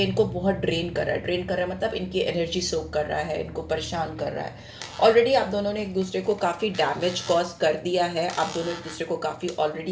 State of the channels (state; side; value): identical; both; correlation 1.00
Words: इनको बहुत ड्रेन कर रहा है। ड्रेन कर रहा है मतलब इनकी एनर्जी सोक कर रहा है, इनको परेशान कर रहा है। ऑलरेडी आप दोनों ने एक दूसरे को काफ़ी डैमेज कॉज कर दिया है, आप दोनों एक दूसरे को काफ़ी